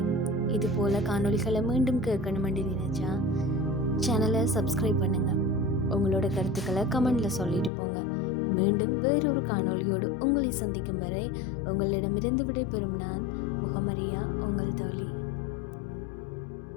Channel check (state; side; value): drops out; right; at 7.7 s